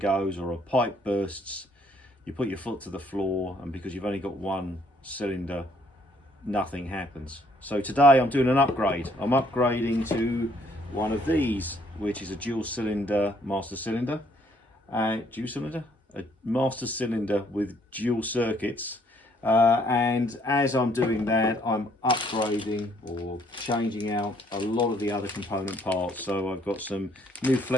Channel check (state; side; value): normal; both; correlation 0.65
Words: or a pipe bursts. You put your foot to the floor, and because you've only got one cylinder, nothing happens. So today I'm doing an upgrade. I'm upgrading to one of these, which is a dual cylinder master cylinder. A master cylinder with dual circuits. And as I'm doing that, I'm upgrading or changing out a lot of the other component parts. So I've got some new